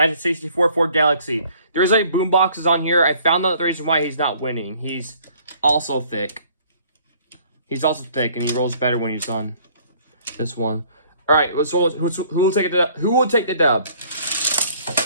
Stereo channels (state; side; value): inverted; both; correlation -0.58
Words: Ford Galaxy. There's like boomboxes on here. I found out the reason why he's not winning. He's also thick. He's also thick and he rolls better when he's on this one. Alright, who will take it? Who will take the dub?